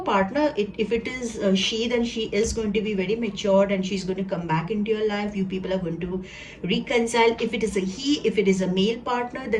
if it is she, then she is going to be very matured, and she's going to come back into your life. You people are going to reconcile. If it is a he, if it is a male partner,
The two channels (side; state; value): both; identical; correlation 1.00